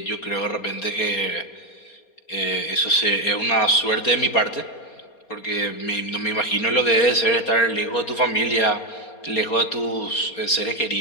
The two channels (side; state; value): right; late; 4.3 ms